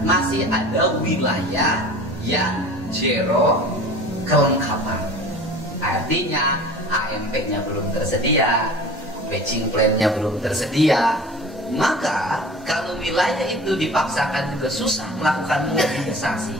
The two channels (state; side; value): normal; both; correlation 0.41